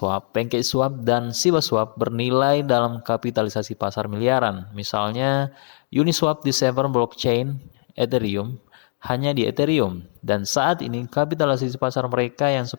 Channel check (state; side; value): silent; right; digital silence